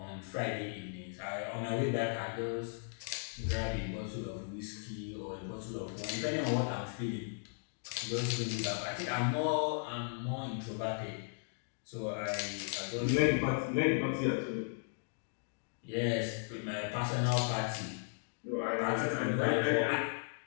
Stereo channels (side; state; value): right; silent; digital silence